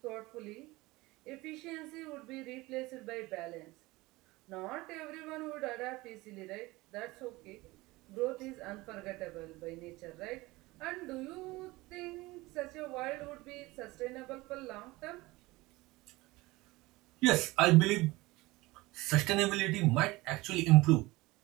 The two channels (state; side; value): quieter; left; 20.9 dB